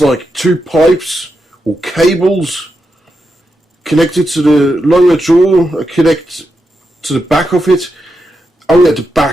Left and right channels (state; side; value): normal; both; correlation 0.86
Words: like 2 pipes or cables connected to the lower jaw, connect to the back of it. Oh yeah, the